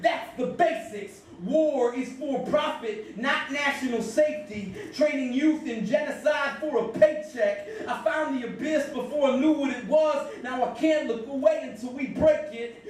that's the basics. War is for profit, not national safety. Training youth in genocide for a paycheck. I found the abyss before I knew what it was. Now I can't look away until we break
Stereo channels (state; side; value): identical; both; correlation 1.00